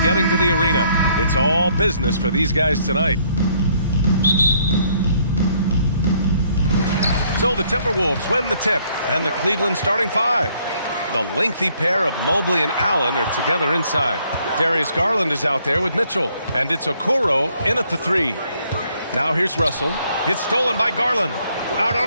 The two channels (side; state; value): both; inverted; correlation -0.67